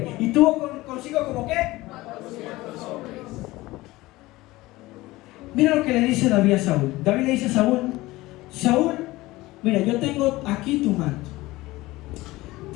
¿Y tuvo consigo como qué? Mira lo que le dice David a Saúl. David le dice a Saúl: Saúl, mira, yo tengo aquí tu manto.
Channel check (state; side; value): quieter; right; 19.2 dB